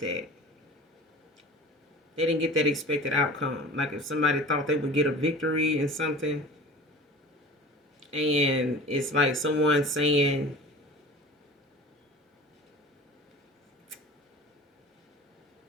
They didn't get that expected outcome. Like if somebody thought they would get a victory in something, and it's like someone saying,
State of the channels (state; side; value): normal; both; correlation 0.39